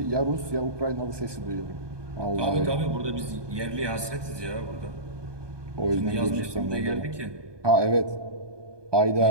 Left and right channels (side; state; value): left; late; 1.2 ms